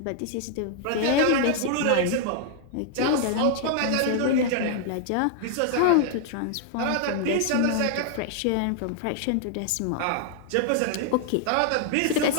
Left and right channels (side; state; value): both; different; correlation 0.00